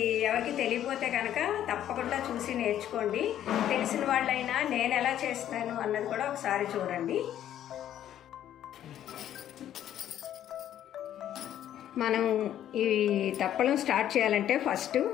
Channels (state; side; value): quieter; right; 11.2 dB